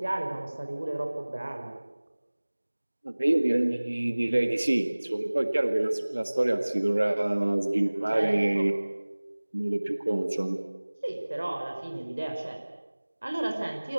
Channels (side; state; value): both; inverted; correlation -1.00